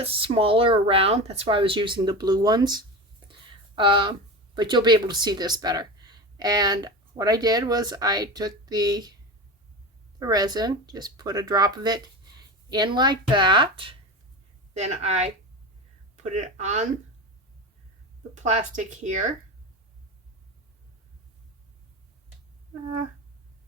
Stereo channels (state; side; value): normal; both; correlation 0.26